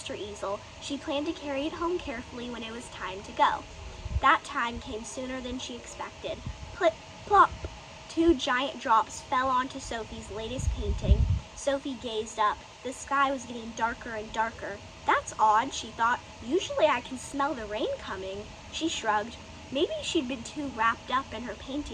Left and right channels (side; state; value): both; identical; correlation 1.00